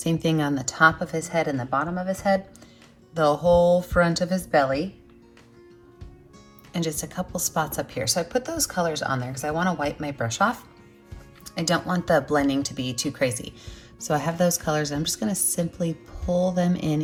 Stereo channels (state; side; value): identical; both; correlation 1.00